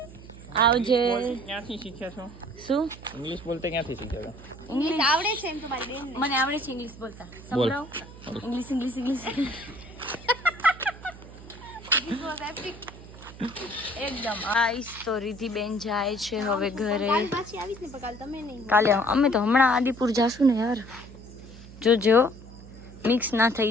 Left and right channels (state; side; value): noise; right; hum, 17 dB below the sound